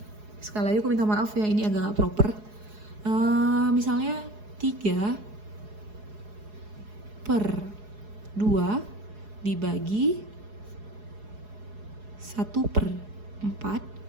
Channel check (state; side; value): late; left; 4.8 ms